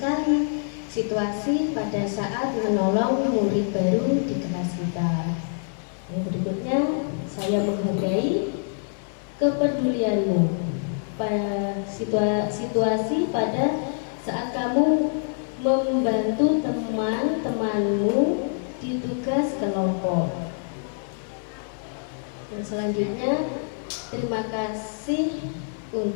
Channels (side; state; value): right; silent; 56 dB below the other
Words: Situasi pada saat menolong murid baru di kelas kita. Yang berikutnya, saya menghargai kepedulianmu pada situasi pada saat kamu membantu teman-temanmu di tugas kelompok. Dan selanjutnya, terima kasih